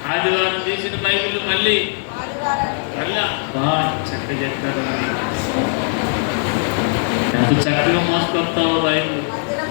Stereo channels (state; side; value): silent; right; 55 dB below the other